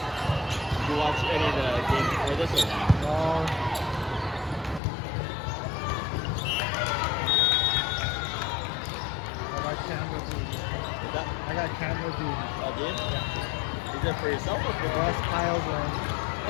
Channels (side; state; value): right; drops out; at 4.8 s